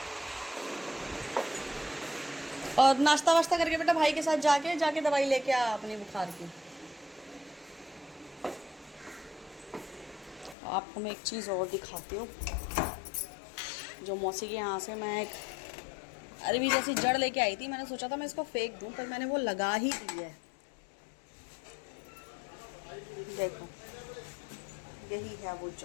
और नाश्ता वाश्ता करके बेटा भाई के साथ जाके दवाई लेके आ अपनी बुखार की। आपको मैं एक चीज़ और दिखाती हूँ, जो मौसी के यहाँ से मैं एक अरबी जैसी जड़ लेके आई थी। मैंने सोचा था मैं इसको फेंक दूँ, पर मैंने वो लगा ही दी है। देखो, यही है वो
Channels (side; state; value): right; drops out; at 10.6 s